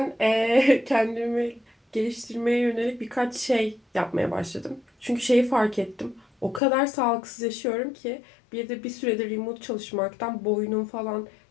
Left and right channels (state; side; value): drops out; right; at 6.6 s